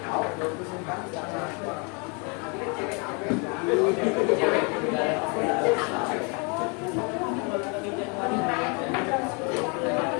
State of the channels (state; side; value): quieter; right; 33.4 dB